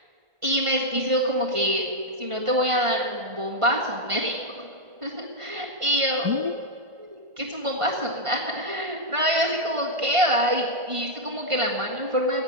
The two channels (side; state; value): left; late; 1.5 ms